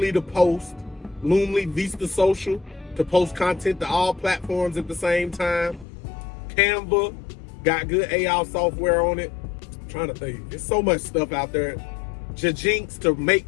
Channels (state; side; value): drops out; right; at 5.9 s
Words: to post, Loomly Vista Social to post content to all platforms at the same time. Canva, got good AI software on it. I'm trying to think, there's so much stuff out there. Jinx to make